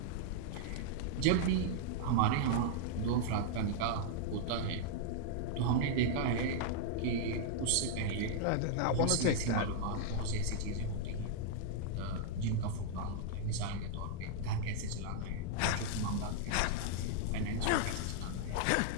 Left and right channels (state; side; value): different; both; correlation -0.01